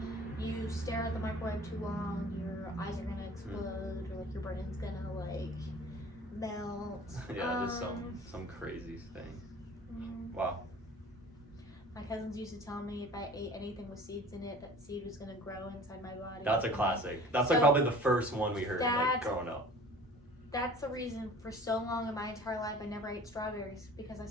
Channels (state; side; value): normal; both; correlation 0.45